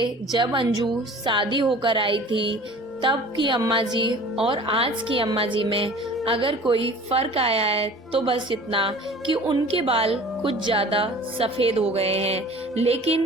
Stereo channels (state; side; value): normal; both; correlation 0.44